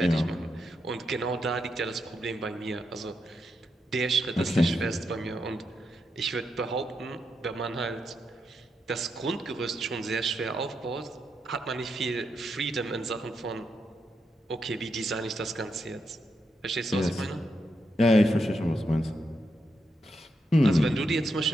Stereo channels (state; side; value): normal; both; correlation 0.83